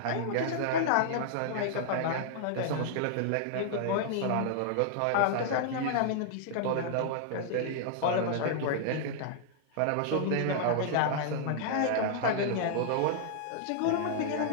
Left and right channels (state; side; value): different; both; correlation -0.01